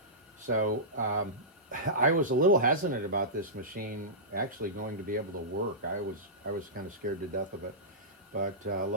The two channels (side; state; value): both; normal; correlation -0.17